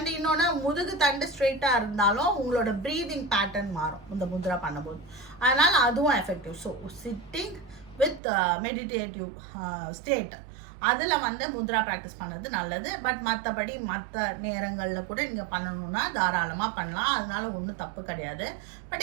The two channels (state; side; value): drops out; left; at 8.2 s